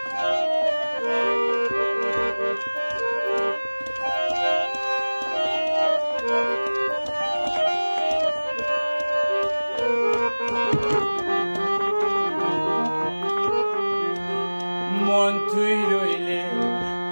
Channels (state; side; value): inverted; both; correlation -1.00